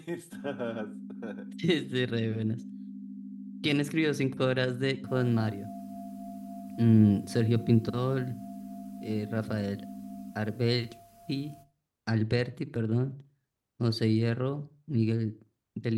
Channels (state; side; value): identical; both; correlation 1.00